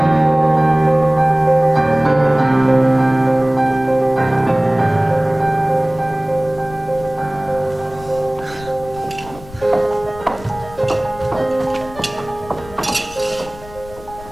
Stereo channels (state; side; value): noise; left; rumble, 18 dB below the sound